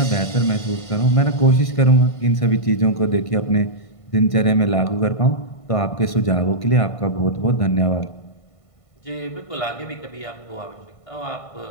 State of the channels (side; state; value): right; late; 1.5 ms